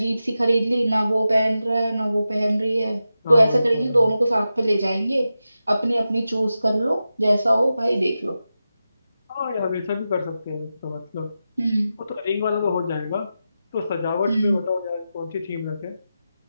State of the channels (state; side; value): inverted; both; correlation -0.91